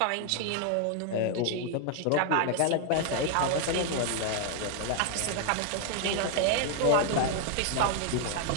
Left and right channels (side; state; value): both; different; correlation 0.00